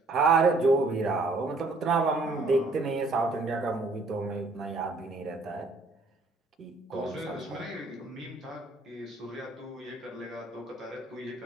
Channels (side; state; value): left; quieter; 3.2 dB